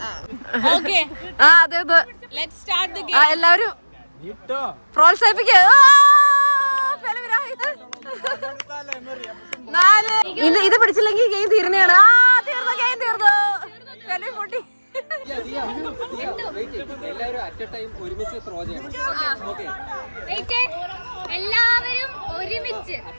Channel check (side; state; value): both; inverted; correlation -1.00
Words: അതെ അതെ, ലെറ്റ്സ് സ്റ്റാർട്ട് ദി ഗെയിം. എല്ലാവരും പ്രോത്സാഹിപ്പിക്കുക. ഇത് പിടിച്ചില്ലെങ്കിൽ ഗെയിം തീർന്നെയാണ്. തീർന്നു ഗെയിം തീർന്നു. പൊട്ടി. എല്ലാവരും അറ്റ് എ ടൈം ഒരുമിച്ച് ത്രോ ചെയ്യണം. എല്ലാവരും ഒരുമിച്ച്